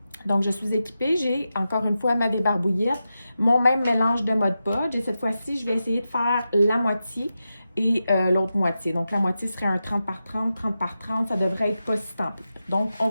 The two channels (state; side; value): inverted; both; correlation -0.91